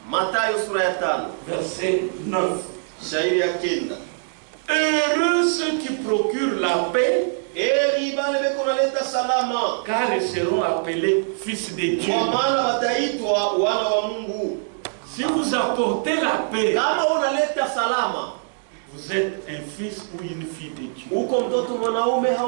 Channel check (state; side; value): silent; left; digital silence